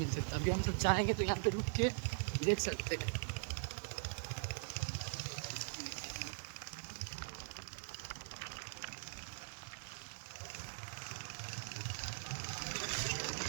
सकता है। अभी हम सब चाहेंगे तो यहाँ पे रुक के देख सकते हैं।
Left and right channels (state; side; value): silent; left; digital silence